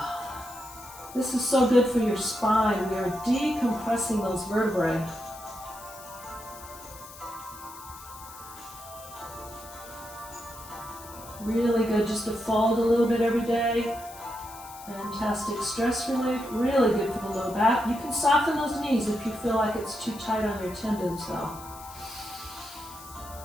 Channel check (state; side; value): noise; left; hiss, 17 dB below the sound